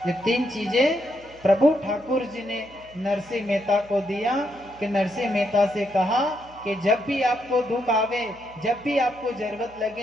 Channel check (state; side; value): noise; right; hum, 24 dB below the sound